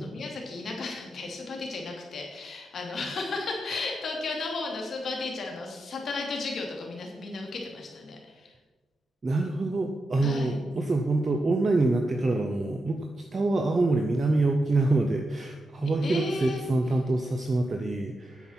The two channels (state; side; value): normal; both; correlation 0.87